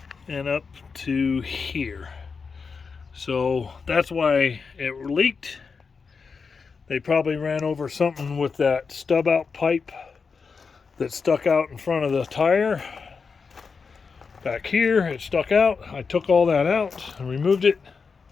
And up to here. So that's why it leaked. They probably ran over something with that stub out pipe that stuck out in front of the tire. Back here it stuck out. I took all that out and removed it,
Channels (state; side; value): quieter; right; 5.2 dB